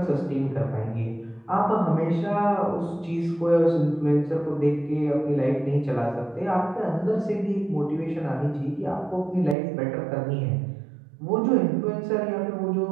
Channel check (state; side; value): drops out; left; at 9.6 s